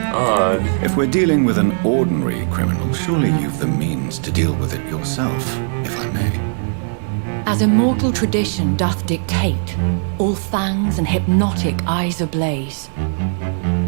Odd. If we're dealing with an ordinary criminal, surely you've the means to deal with it yourself, if I may. As immortal tradition doth dictate, all fangs and hypnotic eyes ablaze,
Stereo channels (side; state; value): left; silent; 65 dB below the other